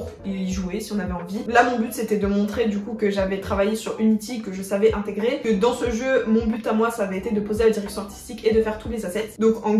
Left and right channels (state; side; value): identical; both; correlation 1.00